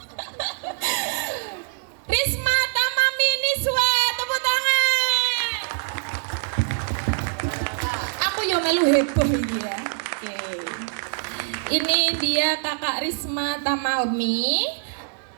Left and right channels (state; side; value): silent; left; 63 dB below the other